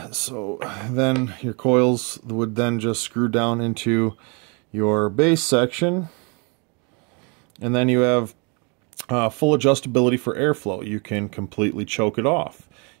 So then your coils would then just screw down into your base section, and then you have full adjustability for airflow. You can completely choke it off.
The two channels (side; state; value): left; quieter; 33.0 dB